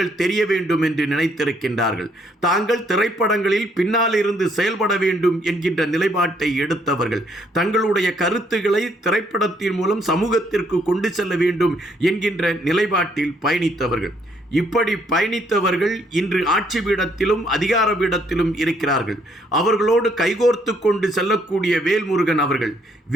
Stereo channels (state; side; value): normal; both; correlation 0.69